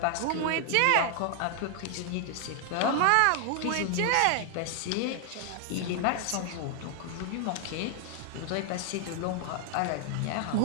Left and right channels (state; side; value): different; both; correlation 0.00